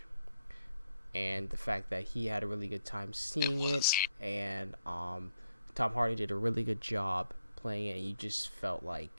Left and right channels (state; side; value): inverted; both; correlation -0.79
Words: And the fact that he had a really good time seeing it, and Tom Hardy did a really good job playing it, and you just felt like